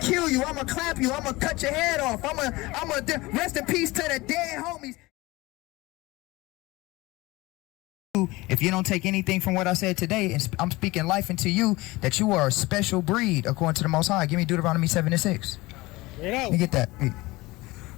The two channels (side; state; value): right; quieter; 21.0 dB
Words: kill you. I'ma clap you. I'ma cut your head off. I'ma rest in peace to the dead homies. If you don't take anything from what I said today, and I'm speaking life into you, that you are a special breed according to the Most High. Give me Deuteronomy 7:6. Let me get that.